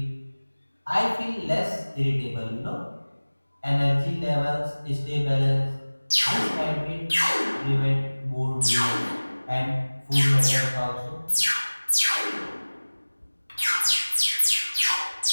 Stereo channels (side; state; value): both; inverted; correlation -1.00